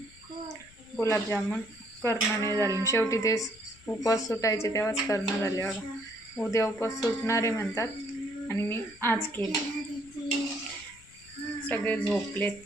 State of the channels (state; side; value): noise; left; rumble, 25 dB below the sound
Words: गुलाबजामुन करणं नाही झाले. शेवटी ते उपवास सुटायचे तेव्हाच करणं झाले. बघा उद्या उपवास सुटणारे म्हणतात आणि मी आज केले. सगळे झोपलेत